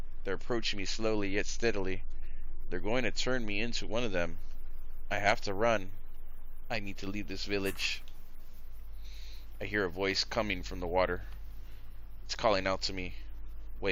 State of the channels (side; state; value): both; identical; correlation 1.00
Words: They're approaching me slowly yet steadily. They're going to turn me into one of them. I have to run. I need to leave this village. I hear a voice coming from the water. It's calling out to me.